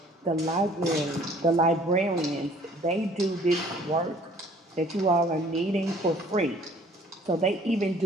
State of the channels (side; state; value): both; normal; correlation 0.55